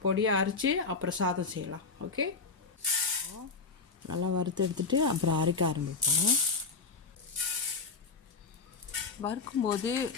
பொடியாக அரைச்சி அப்புறம் சாதம் செய்யலாம். ஓகே. நல்லா வறுத்து எடுத்துகிட்டு அப்புறம் அரைக்க ஆரம்பிப்போம். வறுக்கும்போது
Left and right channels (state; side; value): quieter; right; 4.5 dB